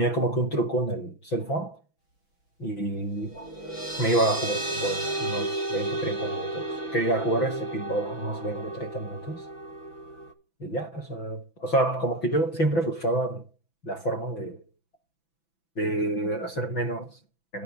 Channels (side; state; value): right; late; 6.0 ms